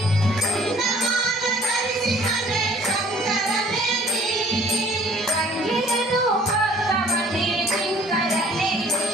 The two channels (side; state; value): both; normal; correlation 0.55